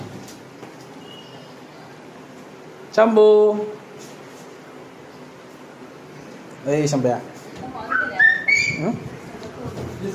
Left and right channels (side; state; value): both; identical; correlation 1.00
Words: शंभू ए शंभ्या